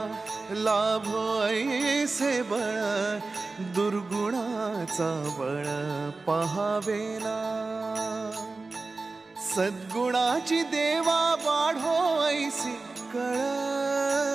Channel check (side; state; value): left; quieter; 3.7 dB